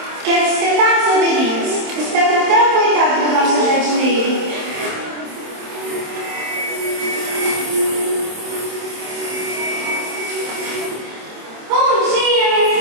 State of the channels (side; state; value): left; late; 27 ms